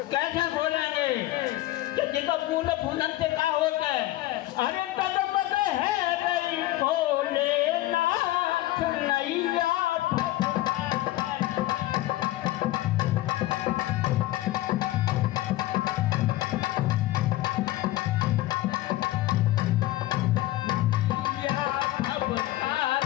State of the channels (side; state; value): right; quieter; 16.3 dB